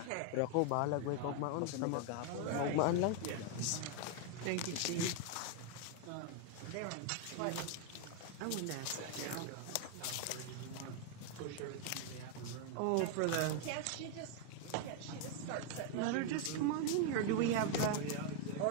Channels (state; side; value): different; both; correlation 0.01